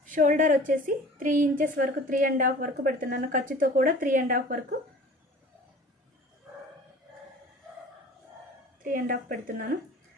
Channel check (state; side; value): normal; both; correlation 0.44